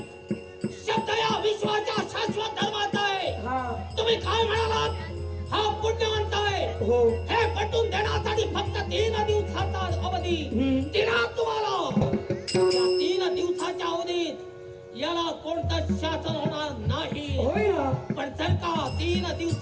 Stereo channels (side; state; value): both; identical; correlation 1.00